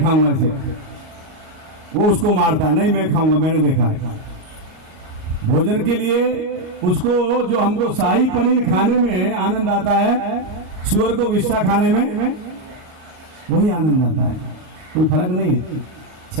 इसे। वो उसको मारता, नहीं मैं खाऊंगा, मैंने देखा है। भोजन के लिए उसको, जो हमको शाही पनीर खाने में आनंद आता है, सुअर को विश्वा खाने में वही आनंद आता है। कोई फर्क नहीं है।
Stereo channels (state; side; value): late; left; 39 ms